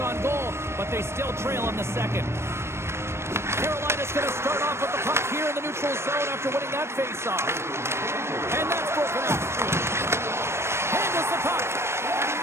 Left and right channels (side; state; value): left; late; 0.13 ms